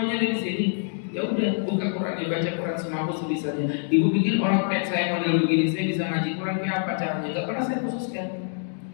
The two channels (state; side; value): silent; right; 59 dB below the other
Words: ada di sini. Ya udah, buka Quran, ya baca Quran semampu sebisanya. Ibu pikir orang kayak saya model begini, saya bisa ngaji Quran kayak apa caranya? Gak pernah saya khususkan.